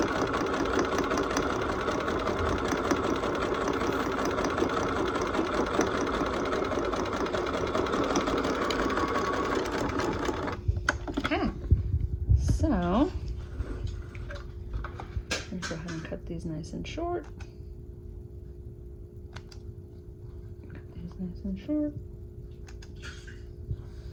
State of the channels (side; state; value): both; identical; correlation 1.00